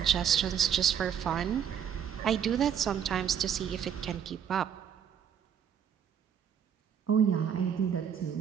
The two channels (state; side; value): quieter; left; 8.4 dB